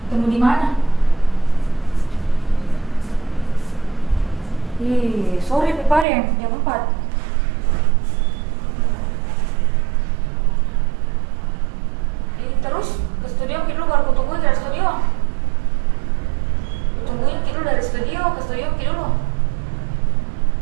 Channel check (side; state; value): left; drops out; at 6.1 s